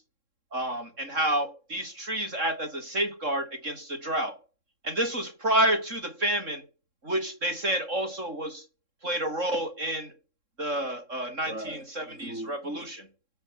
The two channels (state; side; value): late; left; 3.7 ms